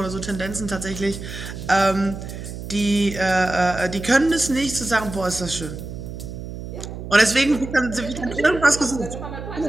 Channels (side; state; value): right; noise; hum, 9 dB below the sound